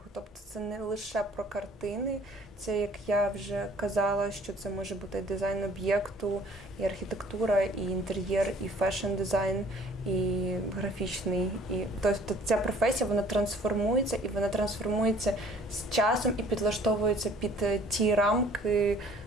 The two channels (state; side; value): normal; both; correlation 0.54